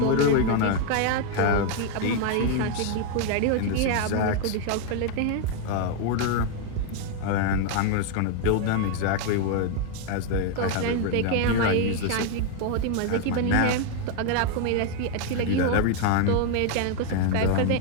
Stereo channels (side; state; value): both; different; correlation 0.01